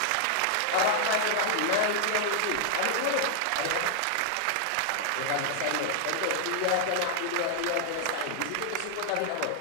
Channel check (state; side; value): different; both; correlation 0.00